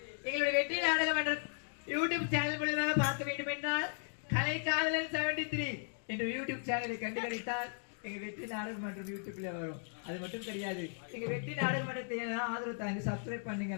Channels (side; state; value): right; silent; digital silence